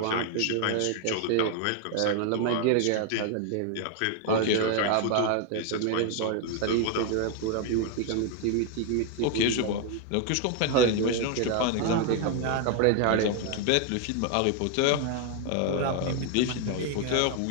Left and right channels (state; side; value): different; both; correlation 0.01